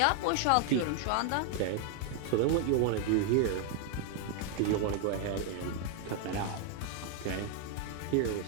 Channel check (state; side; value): different; both; correlation 0.00